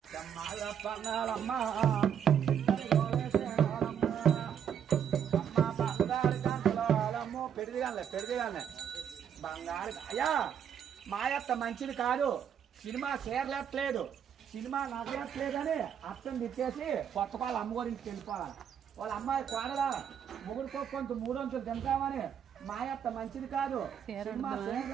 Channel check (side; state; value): left; quieter; 8.5 dB